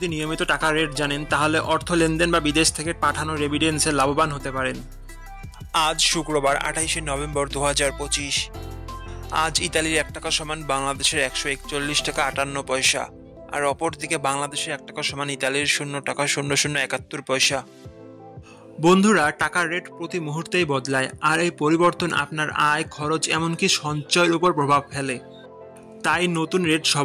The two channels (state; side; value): identical; both; correlation 1.00